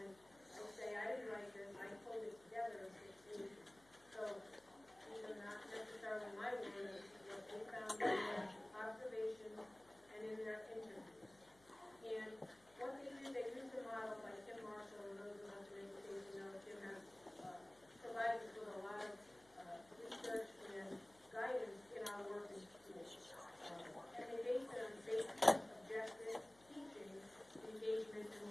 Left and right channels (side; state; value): left; noise; hum, 26 dB below the sound